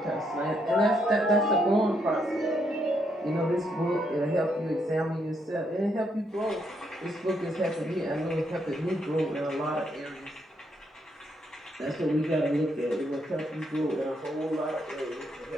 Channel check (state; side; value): normal; both; correlation 0.76